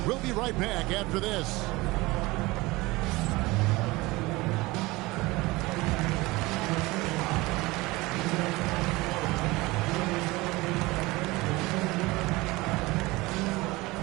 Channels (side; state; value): left; quieter; 21.6 dB